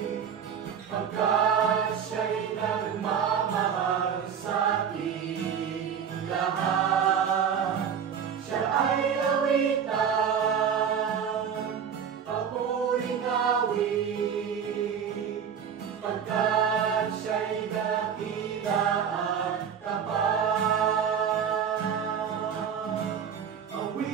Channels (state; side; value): quieter; left; 7.6 dB